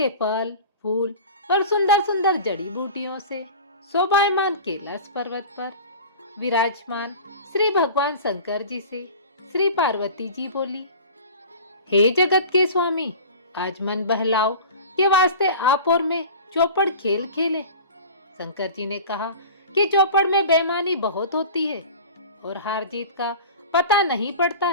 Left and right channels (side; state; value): both; inverted; correlation -0.38